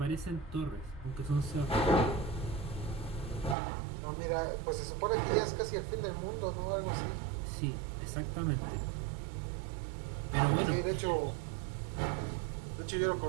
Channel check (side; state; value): left; drops out; at 3.6 s